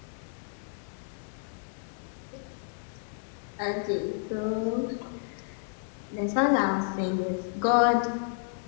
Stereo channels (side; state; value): right; silent; digital silence